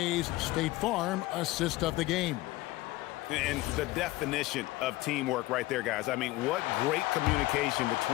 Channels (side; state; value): right; quieter; 18.5 dB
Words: State Farm assist of the game. And the definition of teamwork right there, guys. I mean, what great communication